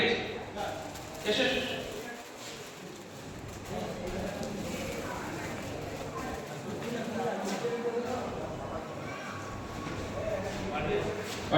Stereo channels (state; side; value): identical; both; correlation 1.00